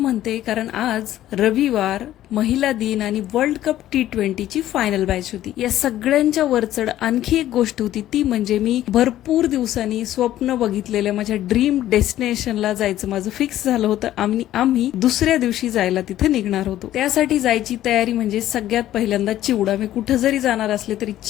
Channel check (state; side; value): quieter; right; 13.2 dB